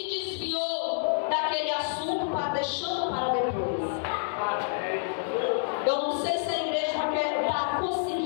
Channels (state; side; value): silent; right; digital silence